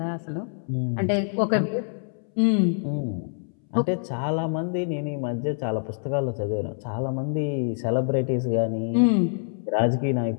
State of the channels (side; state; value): right; silent; 61 dB below the other